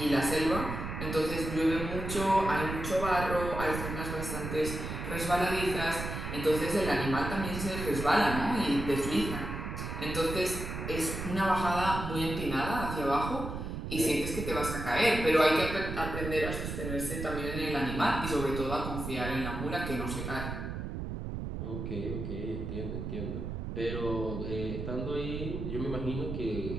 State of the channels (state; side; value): noise; right; rumble, 5 dB below the sound